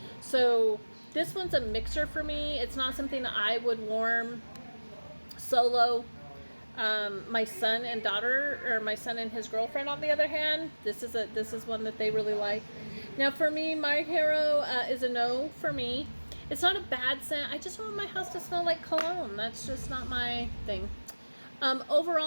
So this one's a mixer for me. It's not something that I would warm solo. My son and daughter, or my son and his girlfriend, on the other hand, this is one that they really like. Now for me, My Hero is a no for me. It's not a bad scent. I just want my house to smell like cologne. That's just not my thing.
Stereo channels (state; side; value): inverted; both; correlation -1.00